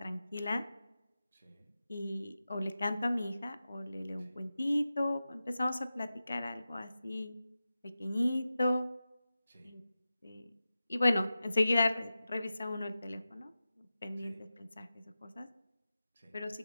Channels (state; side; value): inverted; both; correlation -0.93